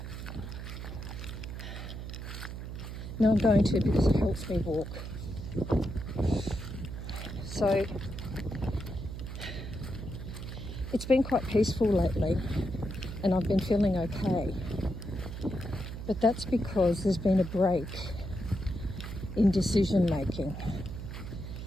No, I'm going to, because it helps me walk. So it's been quite peaceful lately and I've been feeling okay. But that's because there's been a break in decision making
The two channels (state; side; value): noise; right; hum, 8 dB below the sound